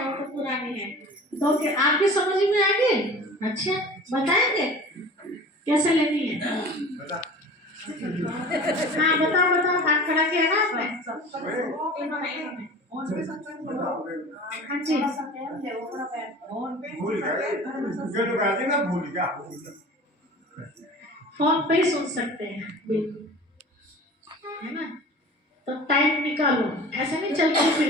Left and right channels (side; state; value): both; normal; correlation 0.40